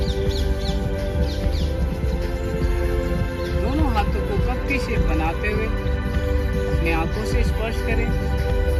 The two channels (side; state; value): both; identical; correlation 1.00